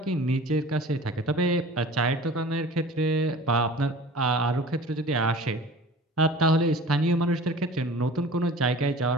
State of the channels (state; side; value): normal; both; correlation 0.42